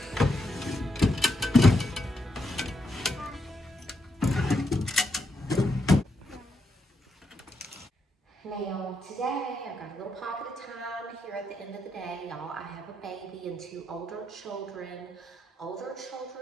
Now, today I've got a little pocket of time here at the end of the day, y'all. I have a baby and two older children. Older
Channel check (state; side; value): normal; both; correlation 0.80